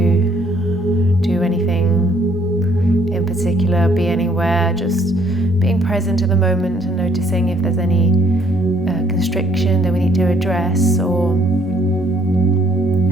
do anything in particular, be anywhere, just being present in the moment and noticing if there's any constriction that we need to address, or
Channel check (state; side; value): normal; both; correlation 0.65